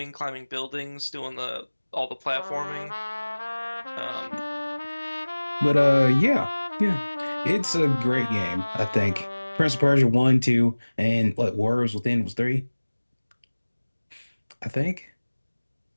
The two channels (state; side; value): inverted; both; correlation -1.00